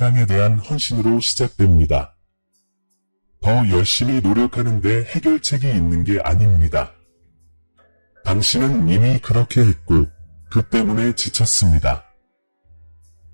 대한 헌신으로 시작됩니다. 더 열심히 노력하는데 해결책이 있는 게 아닙니다. 당신은 이미 그렇게 했고 그 때문에 지쳤습니다.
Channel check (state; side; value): inverted; both; correlation -1.00